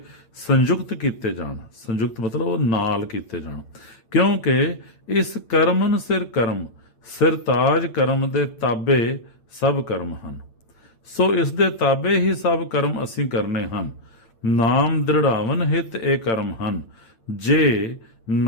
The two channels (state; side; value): late; right; 8.9 ms